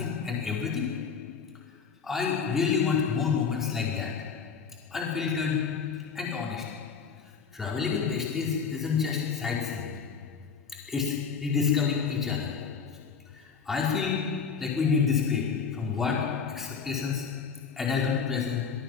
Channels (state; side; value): quieter; right; 6.0 dB